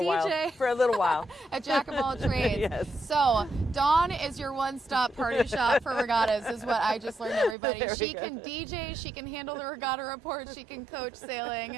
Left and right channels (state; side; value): drops out; left; at 7.6 s